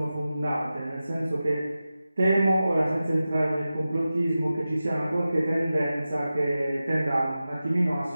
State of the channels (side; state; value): both; inverted; correlation -0.94